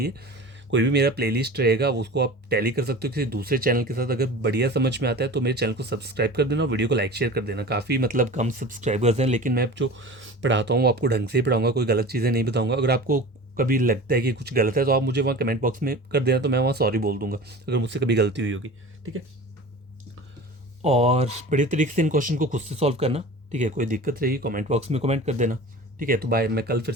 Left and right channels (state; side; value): normal; both; correlation 0.37